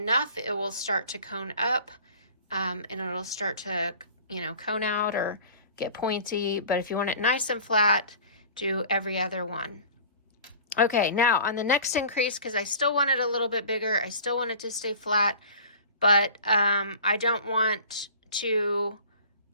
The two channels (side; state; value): both; inverted; correlation -0.43